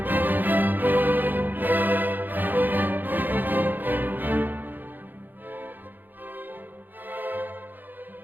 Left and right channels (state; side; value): late; left; 0.088 ms